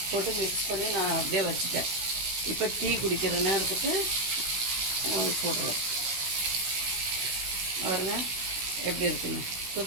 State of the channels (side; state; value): left; late; 16 ms